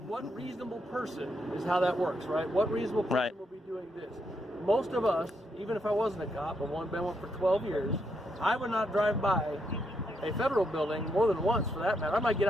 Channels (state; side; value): normal; both; correlation 0.79